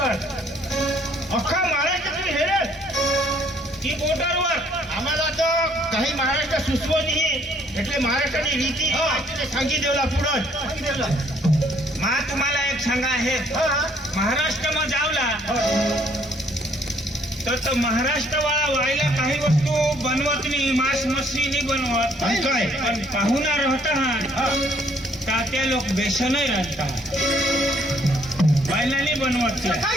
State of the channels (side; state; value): both; normal; correlation 0.64